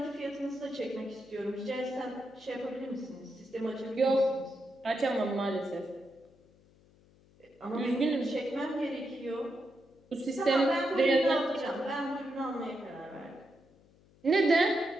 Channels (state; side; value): noise; left; hum, 29 dB below the sound